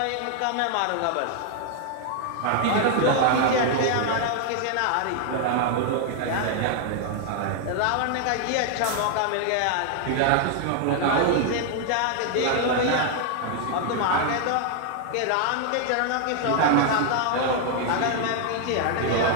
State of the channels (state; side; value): different; both; correlation 0.00